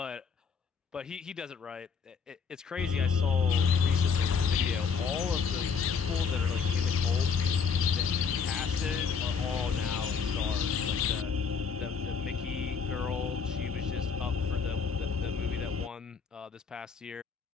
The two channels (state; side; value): quieter; right; 5.9 dB